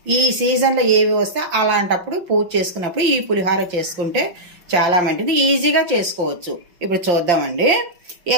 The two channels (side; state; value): left; late; 5.8 ms